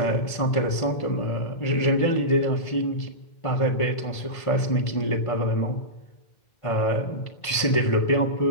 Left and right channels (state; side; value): late; right; 1.5 ms